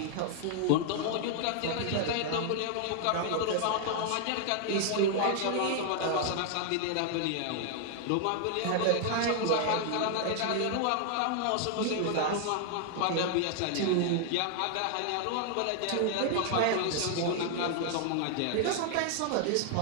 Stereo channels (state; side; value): different; both; correlation 0.00